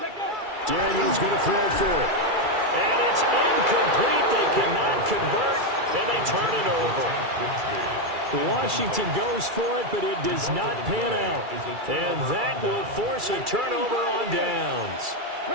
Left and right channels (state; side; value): late; left; 2.3 ms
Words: Daniels going to throw for it. And it's incomplete. They cannot convert, and they turn it over. Washington goes for it, but it does not pan out. And that will force a turnover on downs.